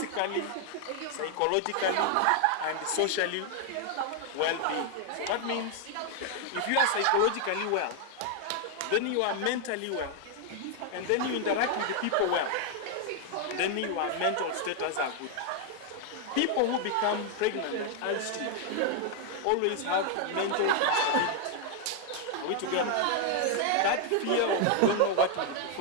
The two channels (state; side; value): different; both; correlation 0.01